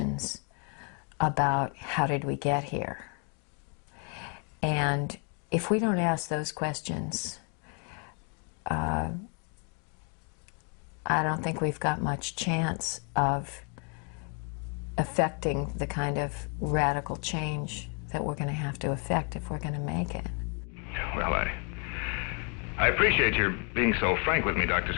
about how did we get here? And if we don't ask those questions, I don't think we've got much chance of affecting the kind of radical change that we're going to have to affect if we're going to make it. Well, I appreciate your being so frank with me, Dr.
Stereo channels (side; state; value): right; quieter; 36.7 dB